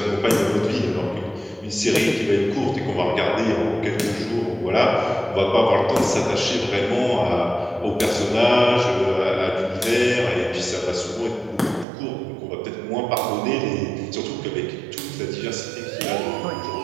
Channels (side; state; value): left; drops out; at 11.9 s